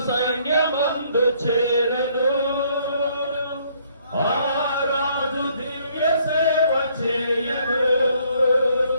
సైన్యమందు చేరను ఆ రాజు దివ్య సేవ చేయను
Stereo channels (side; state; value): both; inverted; correlation -0.65